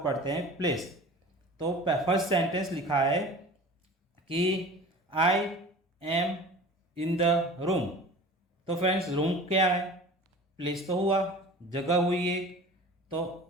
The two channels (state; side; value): normal; both; correlation 0.39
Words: पढ़ते हैं, प्लेस। तो फर्स्ट सेंटेंस लिखा है कि I am in the room. तो फ्रेंड्स, रूम क्या है? प्लेस तो हुआ, जगह हुई है।